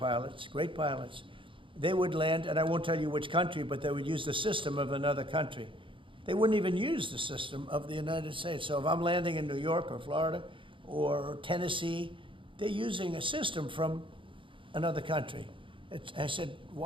great pilots. They would land, and I won't tell you which country, but they would use the system of another country. They wouldn't even use the system of the United States. So if I'm landing in New York or Florida or Tennessee, they're using a system from another country. I said,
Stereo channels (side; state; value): left; late; 0.25 ms